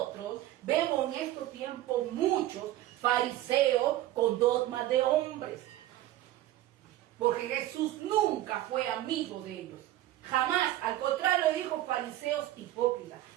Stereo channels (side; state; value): left; quieter; 14.7 dB